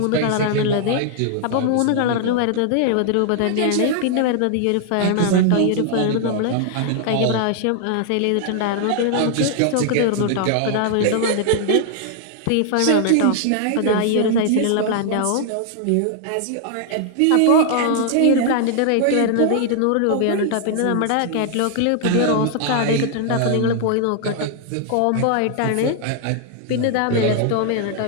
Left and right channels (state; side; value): different; both; correlation 0.00